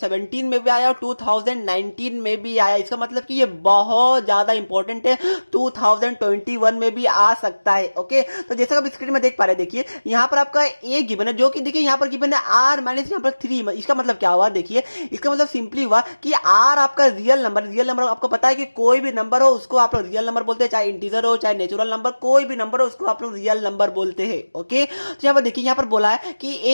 में भी आया और 2019 में भी आया। इसका मतलब कि ये बहुत ज्यादा इंपॉर्टेंट है, 2021 में भी आ सकता है। ओके, तो जैसा कि आप स्क्रीन में देख पा रहे हैं, देखिए यहाँ पर आपका ए गिवन है, जो कि देखिए यहाँ पर गिवन है r माइनस यहाँ पर 3। इसका मतलब क्या हुआ, देखिए इसका मतलब सिंपली हुआ कि r आपका रियल नंबर आपको पता है कि कोई भी नंबर हो उसको आप लोग रियल नंबर बोलते हैं, चाहे इंटीजर हो चाहे नेचुरल नंबर, कोई भी नंबर हो उसको आप लोग रियल नंबर बोलते हैं। ओके, तो यहाँ पर देखिए यहाँ पर पर बोला है कि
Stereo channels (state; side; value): inverted; both; correlation -1.00